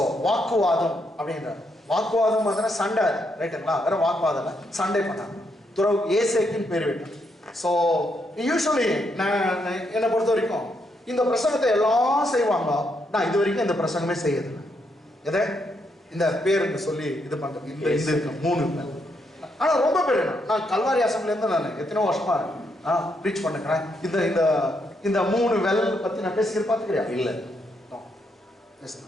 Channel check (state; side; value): normal; both; correlation 0.78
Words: வாக்குவாதம் அப்படின்ற வாக்குவாதம் வந்து சண்டை, ரைட்டுங்களா? வேற வாக்குவாதம் இல்ல, சண்டை பண்ணாங்க. துறவு ஏசேக்கின் பேர் விட்டான். ஸோ யூஸ்வலி நான் என்னை பொறுத்த வரைக்கும் இந்த பிரசங்கத்தை எல்லாம் செய்வாங்க. நான் இது வரைக்கும் இந்த பிரசங்கமே செய்யறதில்லை. எதை இந்த பேருக்கு சொல்லி இது பண்றது, இந்த இருக்கு 3 பேர். ஆனால் ரொம்ப பேர் நான் கல்வாரி அசம்பிளிலேருந்து நான் எத்தனை வருஷமா ப்ரீச் பண்ணுறேன். இந்த 3 வெல் பற்றி நான் பேசிக்கிற பார்த்துக்கிறியா? இல்லை.